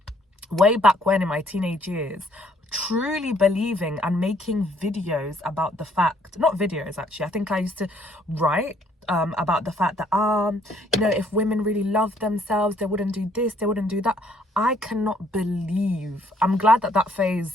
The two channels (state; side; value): normal; both; correlation 0.65